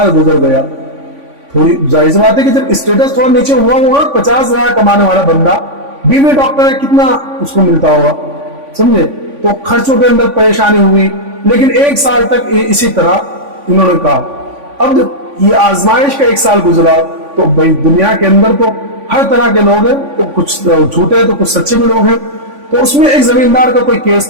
गुजर गया। थोड़ी जाहिर सी बात है कि जब स्टेटस थोड़ा नीचे हुआ होगा, 50,000 कमाने वाला बंदा, बीवी डॉक्टर है, कितना उसको मिलता होगा, समझे। तो खर्चों के अंदर परेशानी हुई, लेकिन 1 साल तक इसी तरह इन्होंने कहा। अब जब ये आजमाइश का 1 साल गुजरा, तो भाई दुनिया के अंदर तो हर तरह के लोग हैं, तो कुछ झूठे हैं तो कुछ सच्चे भी लोग हैं। तो उसमें एक जमींदार का कोई केस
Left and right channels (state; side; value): late; left; 3.5 ms